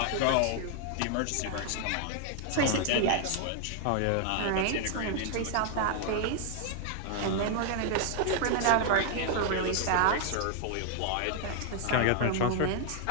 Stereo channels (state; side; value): different; both; correlation 0.00